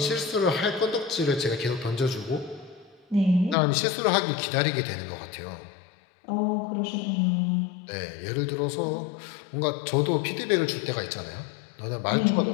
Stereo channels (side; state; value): right; drops out; at 3.6 s